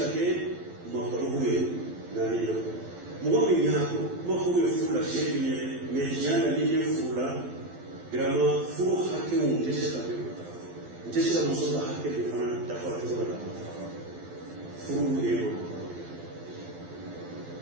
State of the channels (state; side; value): late; left; 12 ms